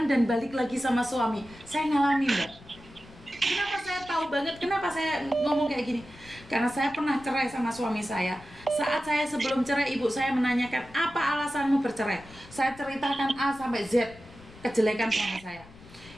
dan balik lagi sama suami. Saya ngalamin, Mbak. Kenapa saya tahu banget? Kenapa saya ngomong kayak gini? Karena saya pernah cerai sama suami saya. Saat saya sebelum cerai, ibu saya menanyakan, apa alasanmu bercerai? Saya ceritakan A sampai Z kejelekan suami saya.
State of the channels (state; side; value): noise; left; rumble, 21 dB below the sound